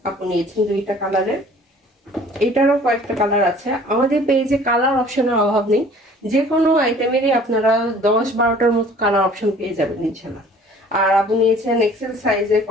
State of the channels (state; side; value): normal; both; correlation 0.51